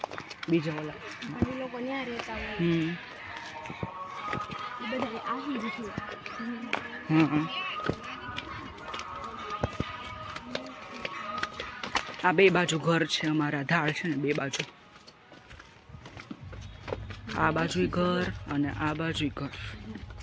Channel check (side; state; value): both; identical; correlation 1.00